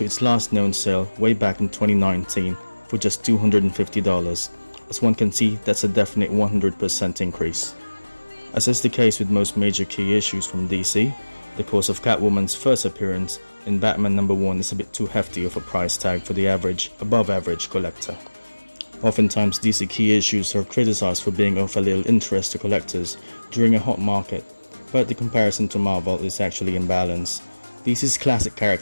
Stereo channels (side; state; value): both; inverted; correlation -1.00